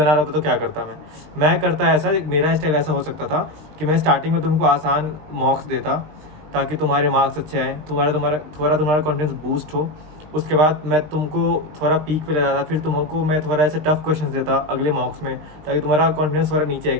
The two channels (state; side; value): late; left; 20 ms